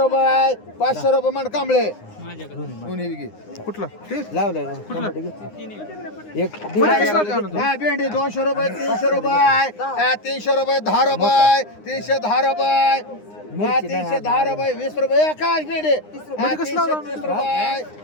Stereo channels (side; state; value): right; late; 9.7 ms